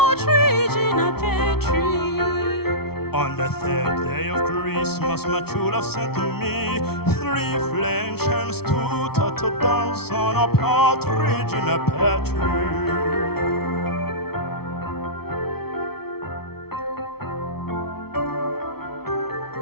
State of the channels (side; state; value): right; late; 0.95 ms